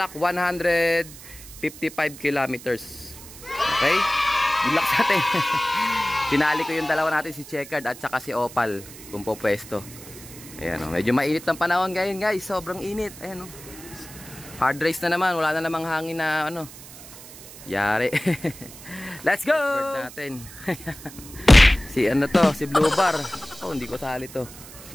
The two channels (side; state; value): right; noise; hiss, 17 dB below the sound